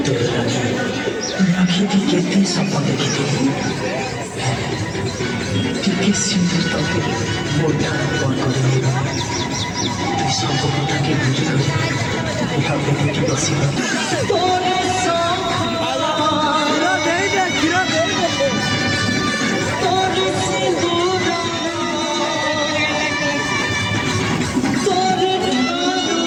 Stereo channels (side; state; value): both; identical; correlation 1.00